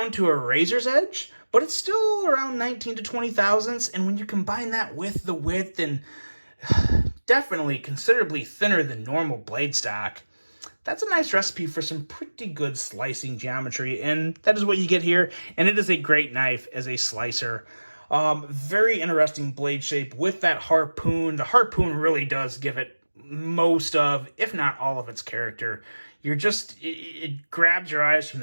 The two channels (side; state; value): both; inverted; correlation -1.00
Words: to a razor's edge, but it's still around 19 to 20 thousandths, and when you combine that with the width and definitely considerably thinner than normal blade stock, that's a nice recipe for some pretty good slicing geometry, and that is what you get here, and it is a great knife as a slicer. Very interesting blade shape with that harpoon. The harpoon really does give it most of, if not all of its character. It grabs your eyes from